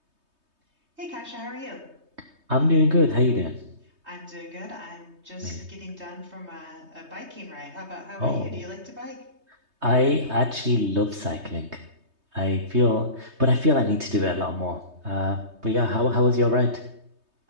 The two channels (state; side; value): late; left; 3.2 ms